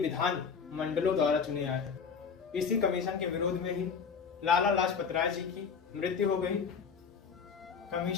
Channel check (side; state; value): right; quieter; 6.1 dB